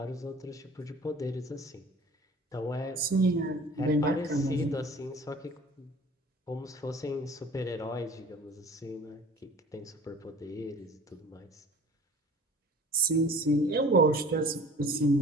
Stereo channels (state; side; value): normal; both; correlation 0.46